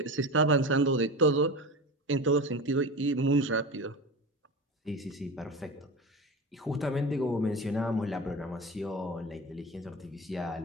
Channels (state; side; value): normal; both; correlation 0.27